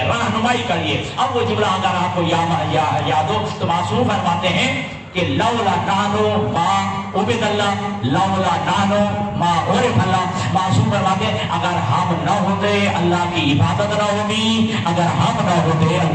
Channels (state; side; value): identical; both; correlation 1.00